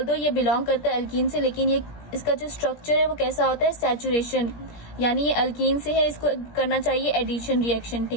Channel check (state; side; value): late; right; 17 ms